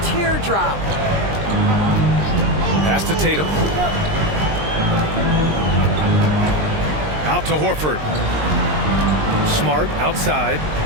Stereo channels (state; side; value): late; left; 20 ms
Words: teardrop. Pass to Tatum. Out to Horford. Smart outside.